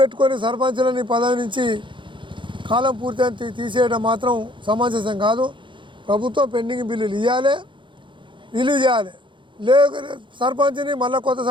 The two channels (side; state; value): left; late; 0.24 ms